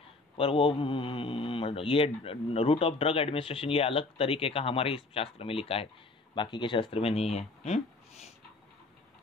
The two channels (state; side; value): quieter; right; 3.3 dB